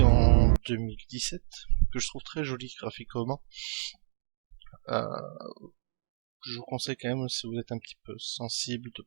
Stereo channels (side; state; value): left; silent; digital silence